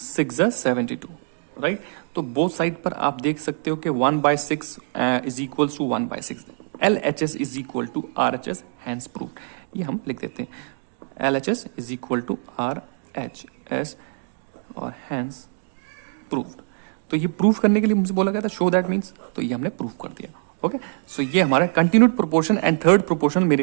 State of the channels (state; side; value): silent; left; 63 dB below the other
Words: 72, राइट। तो बोथ साइड पर आप देख सकते हो कि 1/6 is equals to 1/6। LHS is equal to RHS, hence proved. ये हम लिख देते हैं, LHS is equal to RHS और हैंस प्रूव्ड। तो ये प्रूफ करने के लिए मुझे बोला गया था शो दैट मीन्स, तो ये हमने प्रूफ कर दिया। ओके, सो ये हमारा continued proportion and third proportion